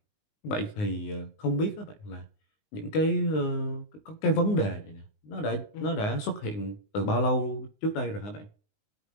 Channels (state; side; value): late; right; 19 ms